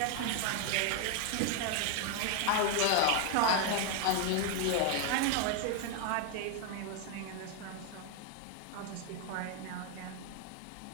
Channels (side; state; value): both; different; correlation 0.01